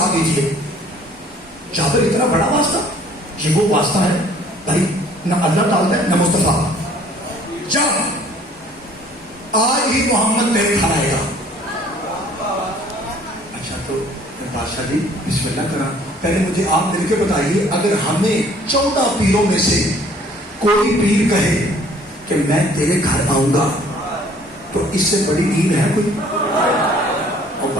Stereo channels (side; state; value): both; normal; correlation 0.56